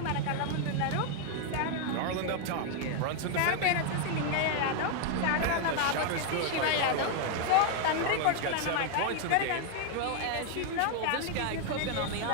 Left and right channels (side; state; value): both; different; correlation 0.00